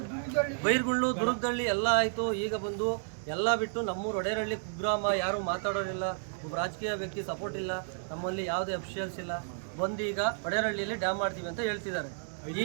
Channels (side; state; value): left; silent; digital silence